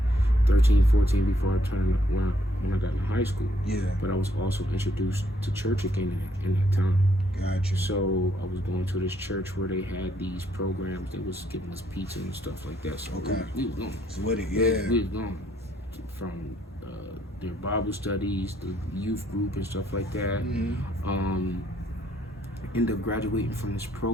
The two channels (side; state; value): both; normal; correlation 0.70